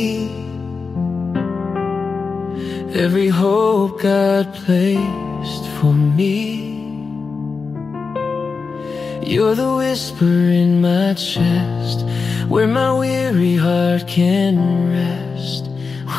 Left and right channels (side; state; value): right; quieter; 4.8 dB